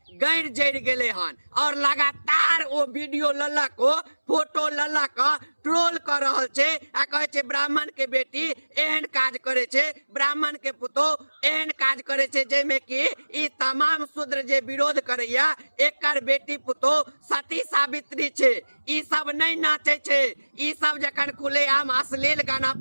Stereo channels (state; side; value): inverted; both; correlation -1.00